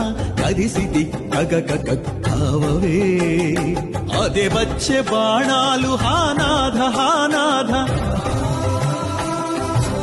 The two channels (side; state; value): both; identical; correlation 1.00